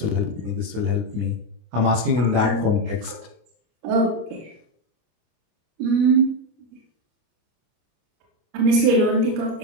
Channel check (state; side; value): late; left; 24 ms